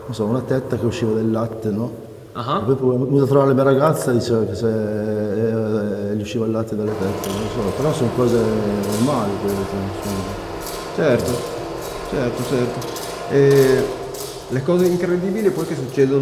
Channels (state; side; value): identical; both; correlation 1.00